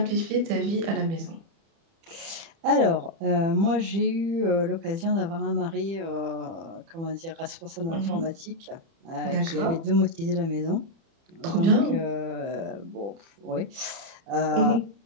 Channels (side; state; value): left; late; 30 ms